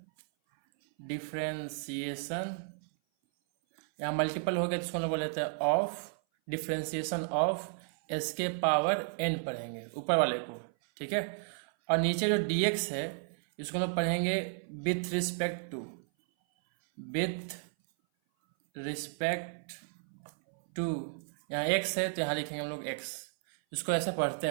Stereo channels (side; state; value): left; silent; 56 dB below the other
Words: डिफ्रेंशिएशन। यहाँ मल्टीपल हो गया, जिसको हम लोग बोल देते हैं ऑफ, डिफ्रेंशिएशन ऑफ एस के पावर एन पढ़ेंगे ऊपर वाले को, ठीक है। और नीचे जो dx है इसको लोग पढ़ेंगे विथ रिस्पेक्ट टू, यहाँ x है तो यहाँ लिखेंगे हम लोग x। इसको ऐसे पढ़ते